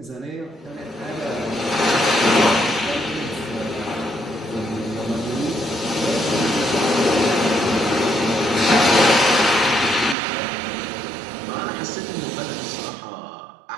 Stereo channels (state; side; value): drops out; left; at 10.2 s